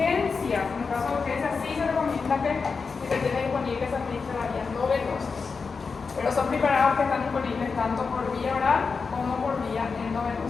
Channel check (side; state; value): right; quieter; 4.9 dB